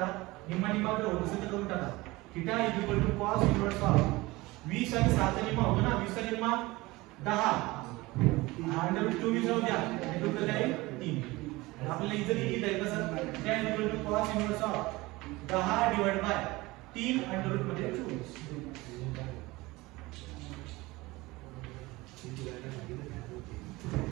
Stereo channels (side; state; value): left; quieter; 21.1 dB